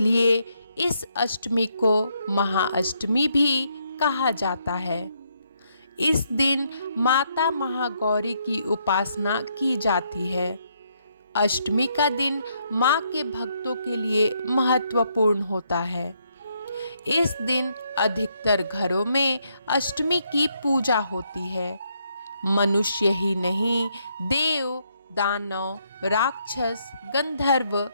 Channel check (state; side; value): inverted; both; correlation -0.75